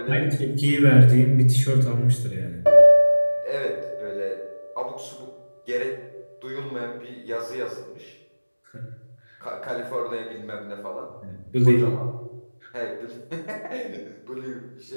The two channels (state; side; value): inverted; both; correlation -1.00